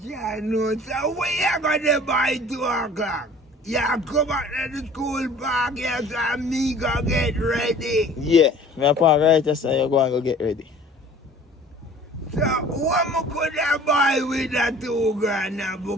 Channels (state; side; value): normal; both; correlation 0.48